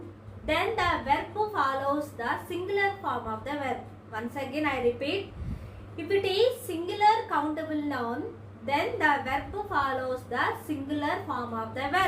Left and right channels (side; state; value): both; identical; correlation 1.00